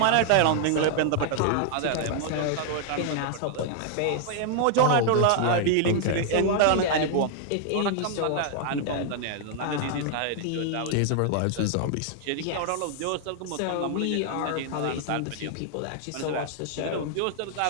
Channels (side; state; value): both; different; correlation 0.00